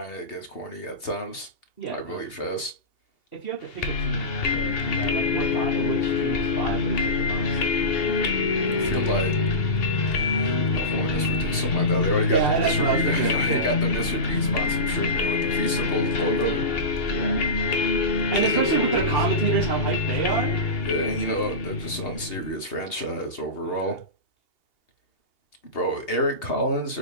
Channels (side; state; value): right; late; 2.8 ms